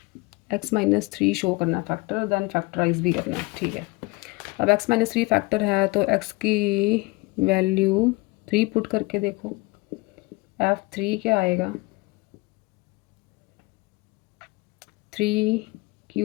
x -3 show करना है फैक्टर, देन फैक्टराइज भी करना है। ठीक है, अब x -3 फैक्टर है तो x की वैल्यू 3 पुट करके देखो, f3 क्या आएगा,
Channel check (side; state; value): right; quieter; 23.8 dB